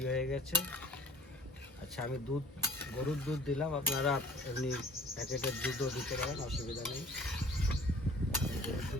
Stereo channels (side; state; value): both; normal; correlation 0.48